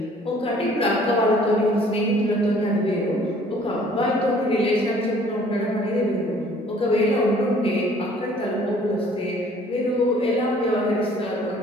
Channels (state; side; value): normal; both; correlation 0.56